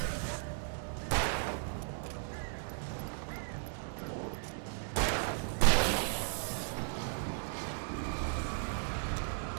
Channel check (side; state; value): left; silent; digital silence